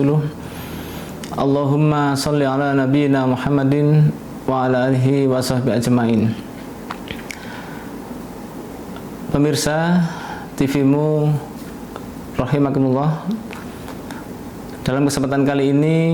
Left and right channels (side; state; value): both; identical; correlation 1.00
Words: Allahumma shalli ala nabiyyina Muhammadin wa ala alihi wa sahbihi ajmain. Pemirsa TV-mu rahimakumullah, dalam kesempatan kali